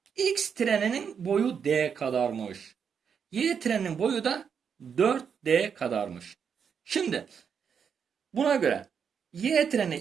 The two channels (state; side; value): quieter; left; 7.0 dB